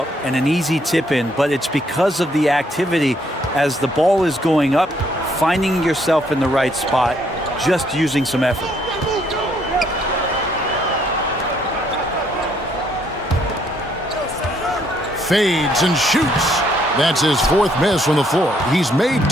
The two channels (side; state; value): both; normal; correlation 0.69